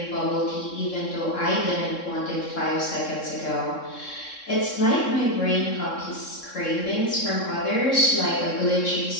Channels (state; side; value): late; right; 3.7 ms